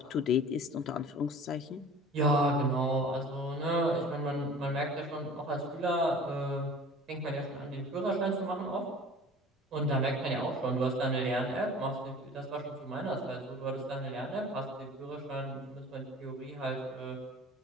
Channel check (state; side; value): normal; both; correlation 0.43